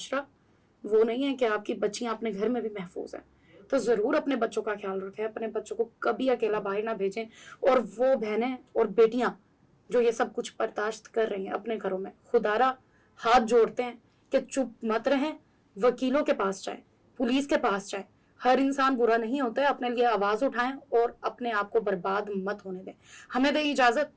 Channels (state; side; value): identical; both; correlation 1.00